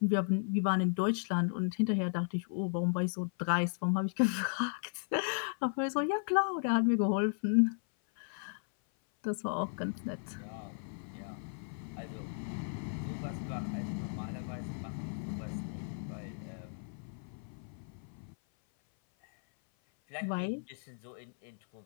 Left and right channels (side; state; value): right; silent; 54 dB below the other